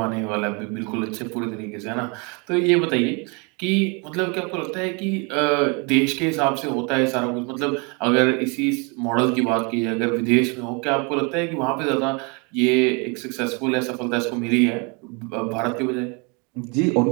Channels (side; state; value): left; quieter; 31.9 dB